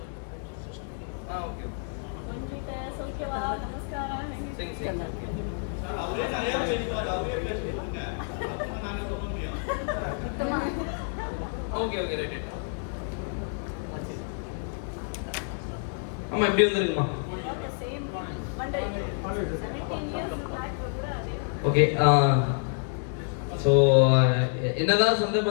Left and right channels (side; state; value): right; silent; 59 dB below the other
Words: Okay okay okay right. அம்மா எப்படி வந்துருக்குமா? ஓகே. ஸோ என்னதான் சொந்த